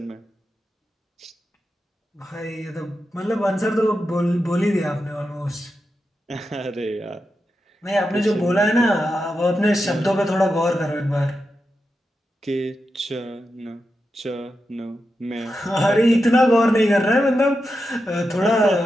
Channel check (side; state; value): both; normal; correlation 0.88